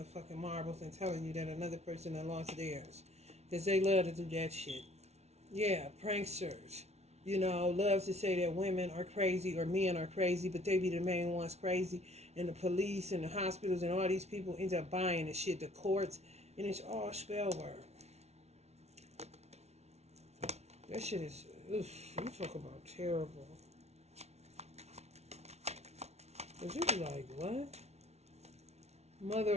marbles and telling you that another person had lost theirs. Because they love to do that shit. Yeah, pranksters. You know, loves to say that women are crazy or men are crazy, but they be the main ones crazy. And the police and the hospitals and all these people end up buying the shit, the courts, and it's all spell work. That shit is, oof, you talk about terrible. But you be like, what?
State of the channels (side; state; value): left; late; 0.31 ms